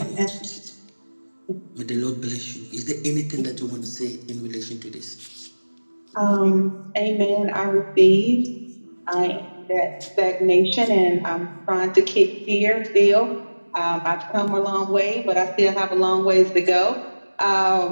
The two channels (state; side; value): inverted; both; correlation -1.00